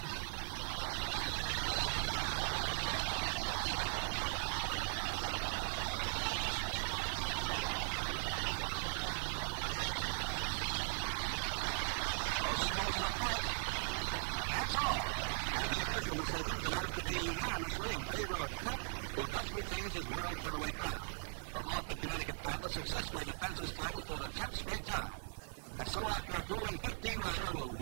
Closing moments of the fight, and that's all. And the official decision is announced to be unanimously in favor of Pep, who thus retains his world featherweight crown. the Hartford, Connecticut battler successfully defends his title for the 10th straight time. And so after a grueling 15-rounder,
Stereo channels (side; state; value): left; silent; digital silence